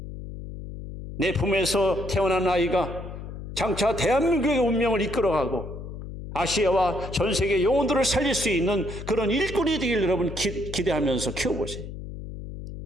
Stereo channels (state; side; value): noise; left; hum, 10 dB below the sound